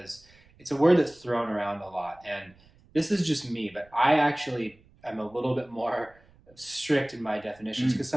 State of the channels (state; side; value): noise; right; rumble, 28 dB below the sound